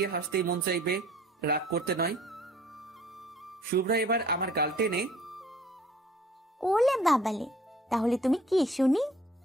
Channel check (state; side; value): normal; both; correlation 0.54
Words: হাসতেই মন চাইবে, রাগ করতে নয়। শুভ্রা এবার আমার গাল টেনে, ওলে বাবালে, তাহলে তুমি কি শুনি?